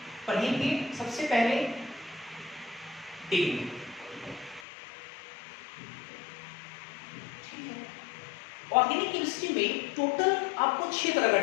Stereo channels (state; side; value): drops out; right; at 4.7 s